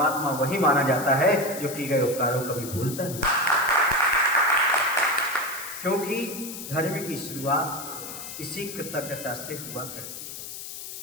वही माना जाता है जो किए गए उपकारों को कभी भूलता नहीं। क्योंकि धर्म की शुरुआत इसी कृतज्ञता से हुआ करती है।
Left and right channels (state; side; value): noise; left; hiss, 10 dB below the sound